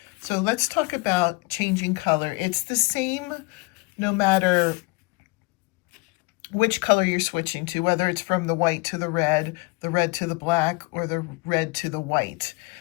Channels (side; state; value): right; quieter; 26.7 dB